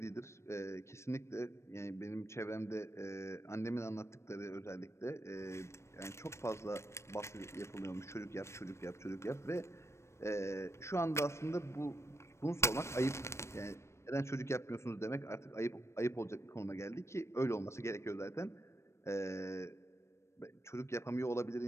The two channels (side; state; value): right; late; 0.13 ms